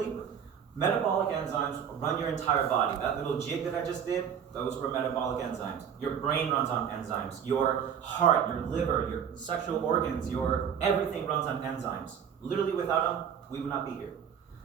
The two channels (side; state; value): left; quieter; 8.1 dB